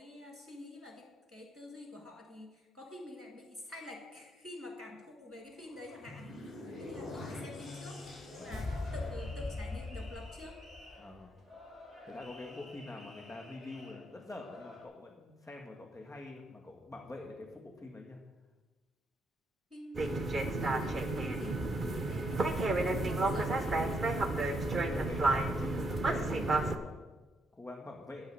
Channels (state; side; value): normal; both; correlation 0.76